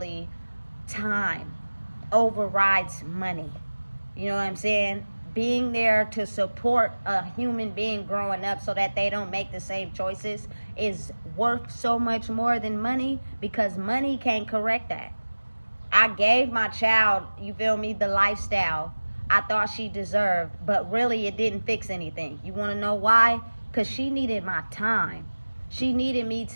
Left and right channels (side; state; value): both; inverted; correlation -1.00